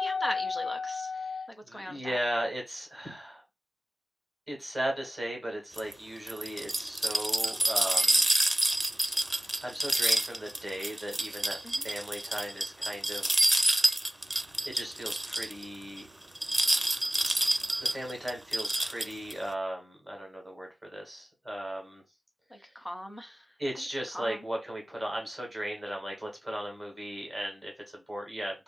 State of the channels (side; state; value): both; normal; correlation 0.96